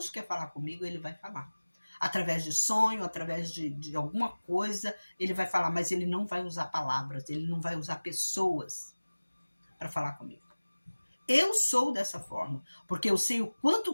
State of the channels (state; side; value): inverted; both; correlation -1.00